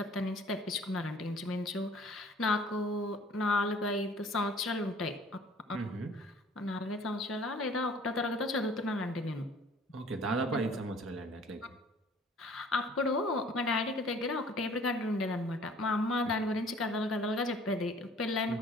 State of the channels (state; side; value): normal; both; correlation 0.52